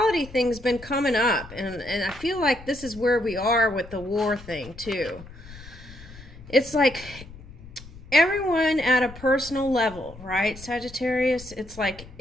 thing's been coming up, and I feel like this is where we are with the war thing too. It's like everyone at a personal level, right, Sagittarius? It's like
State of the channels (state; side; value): noise; left; rumble, 17 dB below the sound